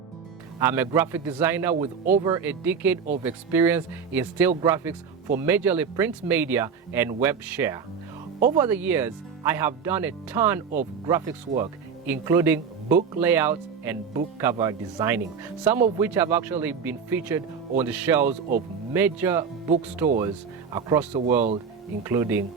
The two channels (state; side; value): quieter; left; 6.3 dB